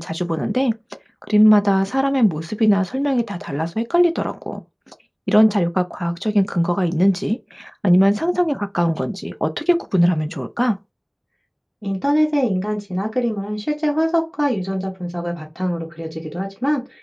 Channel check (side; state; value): both; identical; correlation 1.00